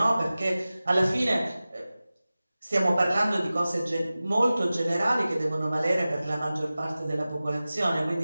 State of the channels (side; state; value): both; inverted; correlation -0.97